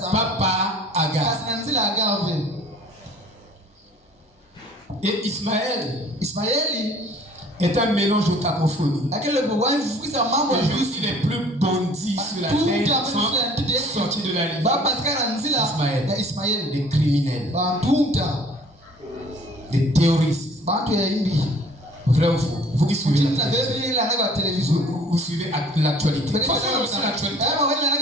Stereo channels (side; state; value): both; normal; correlation 0.52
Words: Pas par Agar. Et Ismaël est un mélange de cacophonie. Les juifs les plus bandits sur la terre sont sortis de la ligne. Ismaël, des criminels, des terroristes. Vrai ou faux? Vous qui suivez la télévision, vous suivez l'actualité.